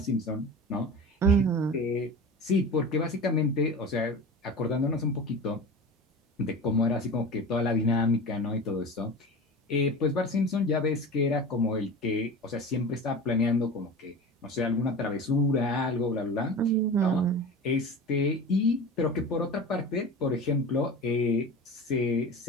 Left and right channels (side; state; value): both; normal; correlation 0.32